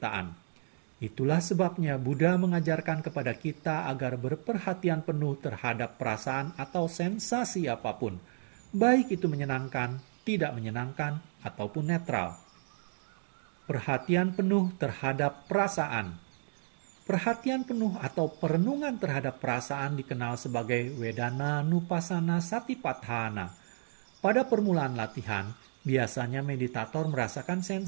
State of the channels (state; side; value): silent; left; digital silence